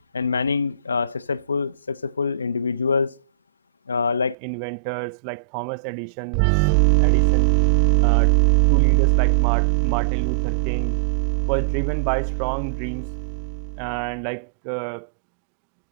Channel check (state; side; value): drops out; left; at 4.4 s